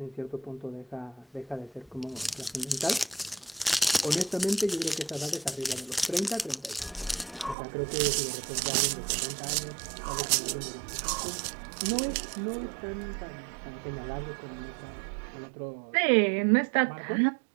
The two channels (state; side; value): drops out; left; at 7.6 s